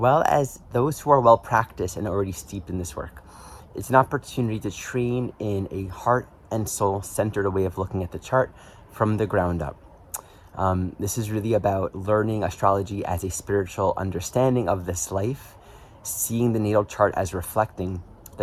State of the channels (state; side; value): identical; both; correlation 1.00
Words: as those who are well practiced and already steeped in this work. It's an opportunity to train in a heart and soul centered way of looking at the chart from the ground up. This is really about learning astrology as a spiritual understanding of this life, seeing the natal chart as reflecting